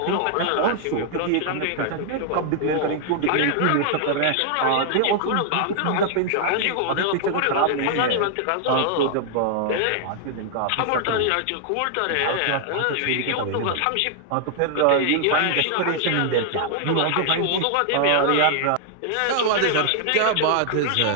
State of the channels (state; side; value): different; both; correlation 0.00